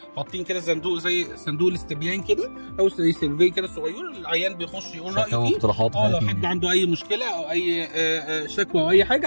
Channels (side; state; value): both; inverted; correlation -1.00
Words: حاطين كده صندوق زي صندوق الاستبيان كده او زي سيرفي كده صغير، العيان بيخش يقول رايه فيه. لو حد عنده اي مشكله او اي شكوى او اي